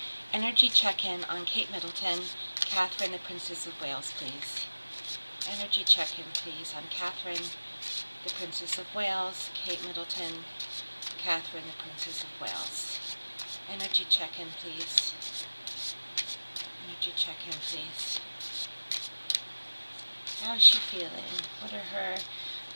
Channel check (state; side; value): inverted; both; correlation -1.00